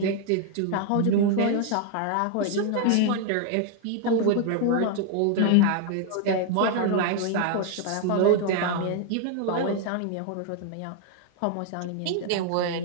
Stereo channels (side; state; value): both; different; correlation 0.00